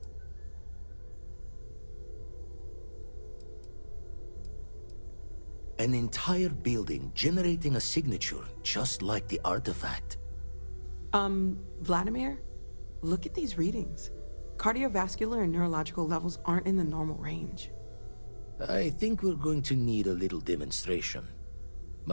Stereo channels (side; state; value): both; inverted; correlation -1.00